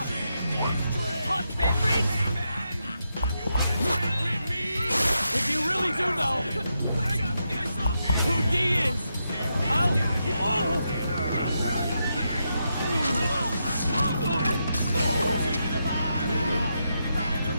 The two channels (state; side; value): inverted; both; correlation -0.84